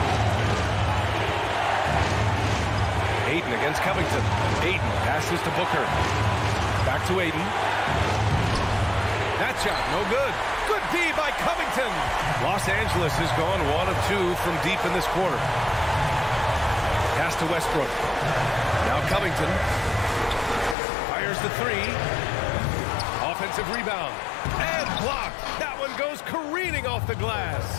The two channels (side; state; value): right; drops out; at 20.8 s